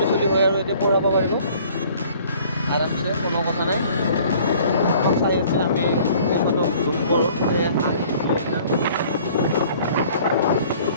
চলি হয় আৰু এতিয়া পঢ়াব পাৰিব আৰামছে কোনো কথা নাই চাই আছে আমি সিহঁতক জুম কৰোঁ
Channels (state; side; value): inverted; both; correlation -0.54